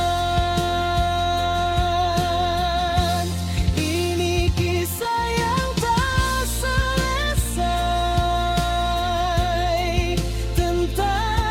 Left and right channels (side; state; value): both; identical; correlation 1.00